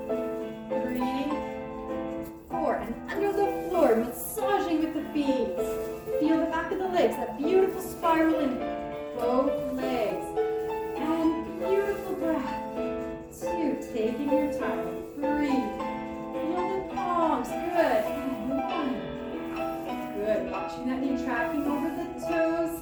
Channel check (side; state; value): both; identical; correlation 1.00